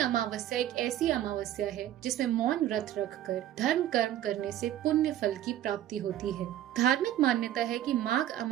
एक ऐसी अमावस्या है जिसमें मौन व्रत रखकर धर्म कर्म करने से पुण्य फल की प्राप्ति होती है। धार्मिक मान्यता है कि माघ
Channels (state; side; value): quieter; left; 12.1 dB